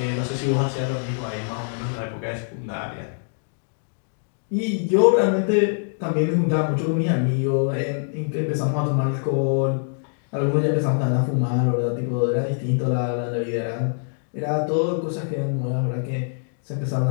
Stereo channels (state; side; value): silent; right; digital silence